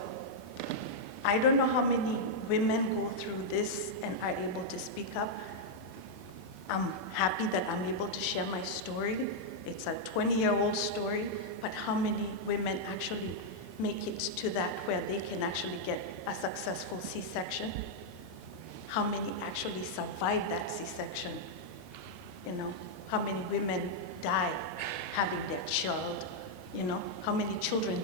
I don't know how many women go through this and are able to speak up. I'm happy that I'm able to share my story. It's a 20-year-old story, but how many women actually make it to that where they can actually get a successful C-section? How many actually survive that C-section? You know, how many women die having their child? You know, how many children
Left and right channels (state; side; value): late; right; 18 ms